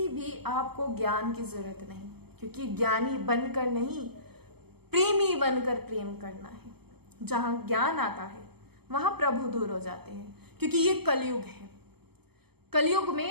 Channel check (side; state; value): left; late; 0.97 ms